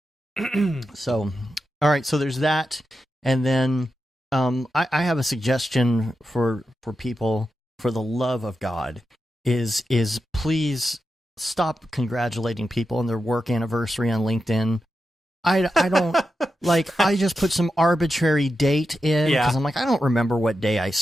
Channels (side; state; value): both; normal; correlation 0.89